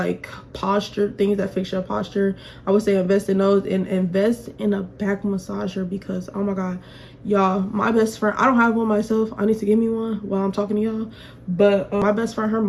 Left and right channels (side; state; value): both; identical; correlation 1.00